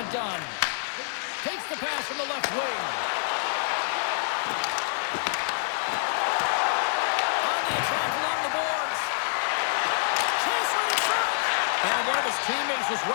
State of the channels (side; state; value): right; silent; digital silence